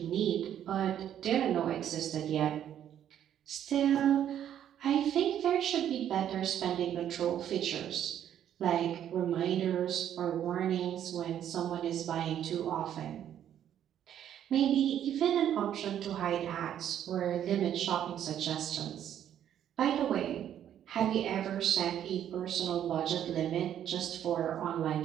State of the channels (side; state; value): left; quieter; 10.3 dB